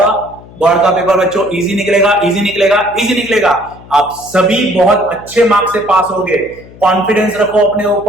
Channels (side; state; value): left; noise; hum, 21 dB below the sound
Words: बोर्ड का पेपर बच्चों इजी निकलेगा, इजी निकलेगा, इजी निकलेगा। आप सभी बहुत अच्छे मार्क्स से पास होगे, कॉन्फिडेंस रखो अपने